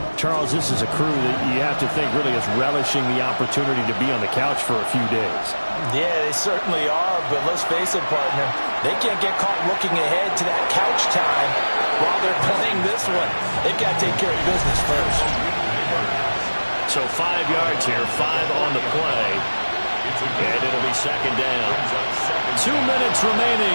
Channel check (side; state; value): both; inverted; correlation -1.00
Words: Charles, this is a crew that you have to think really is relishing the opportunity to be on the couch for a few days. Yeah, they certainly are. But let's face it, partner. They can't get caught looking ahead to that couch time while they're playing this one. They've got to take care of business first. So 5 yards here, 5 on the play. And it'll be 2nd down. 2 minutes